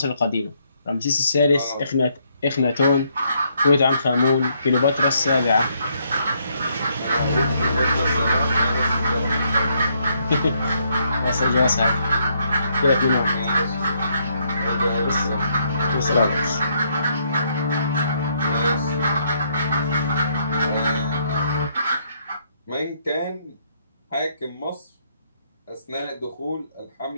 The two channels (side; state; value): both; inverted; correlation -0.72